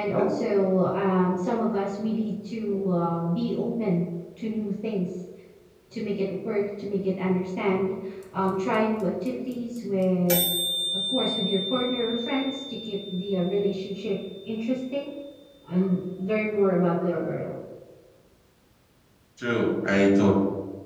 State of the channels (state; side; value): identical; both; correlation 1.00